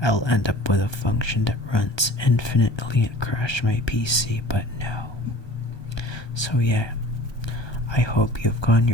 I'll end up with a function that runs infinitely and crash my PC, but no. So yeah, I hope you've gotten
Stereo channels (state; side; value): late; right; 1.2 ms